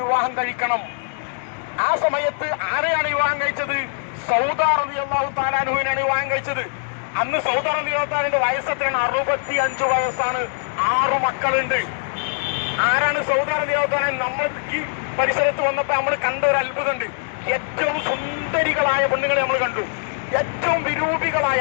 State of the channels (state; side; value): silent; right; 64 dB below the other